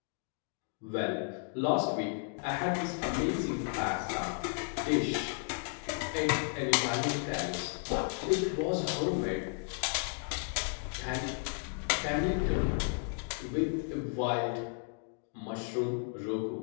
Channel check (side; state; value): right; silent; 55 dB below the other